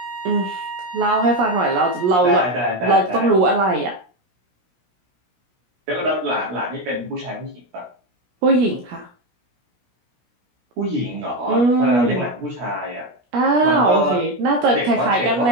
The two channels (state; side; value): late; left; 17 ms